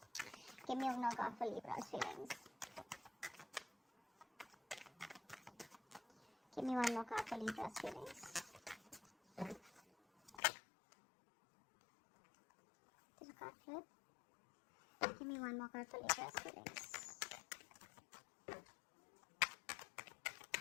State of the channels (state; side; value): drops out; right; at 10.4 s